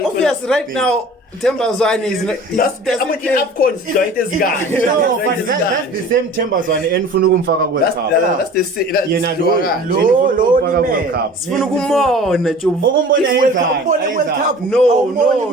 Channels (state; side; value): normal; both; correlation 0.43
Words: Obvious, feel. right now, Thembazwane is not. That's I'm the AFCON joint this guy. No, but that's the same Thembazwane enifuna ukumfaka World Cup. That's the same. That's Yena low. Low ufaka ni World man. Cup. Sifuna ukumbona Jobu. Ukumbona yenzani? World Cup. No,